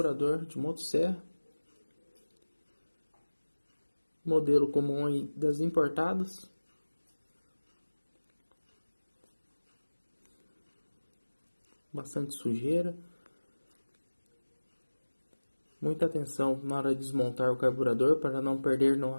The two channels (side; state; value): both; inverted; correlation -1.00